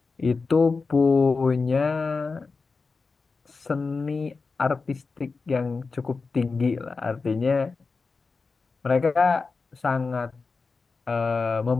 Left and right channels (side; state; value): right; quieter; 4.3 dB